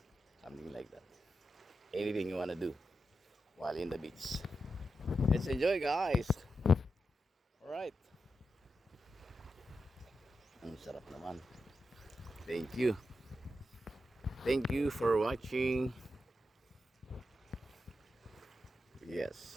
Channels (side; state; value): both; normal; correlation 0.88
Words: something like that. Anything you wanna do while in the beach. Let's enjoy guys. Alright. Ang sarap naman. Thank you for watching.